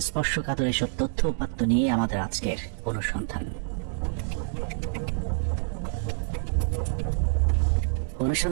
স্পর্শকাতর এসব তথ্য উপাত্ত নিয়ে আমাদের আজকের অনুসন্ধান।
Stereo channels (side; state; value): left; silent; digital silence